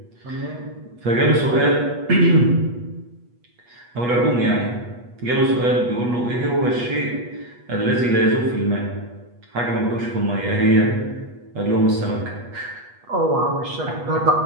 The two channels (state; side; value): late; left; 8.3 ms